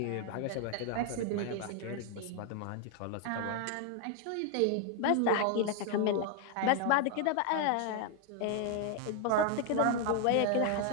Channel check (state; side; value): different; both; correlation 0.01